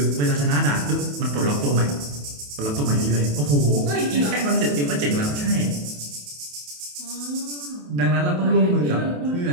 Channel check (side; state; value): left; late; 28 ms